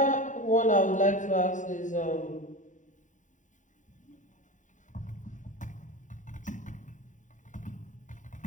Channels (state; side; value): late; right; 0.36 ms